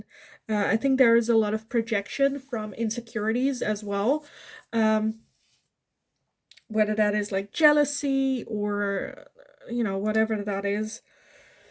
I think there is a lot of projection from insecurities as well. Whether that is like jealousy or, you know, whatever that is.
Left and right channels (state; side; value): identical; both; correlation 1.00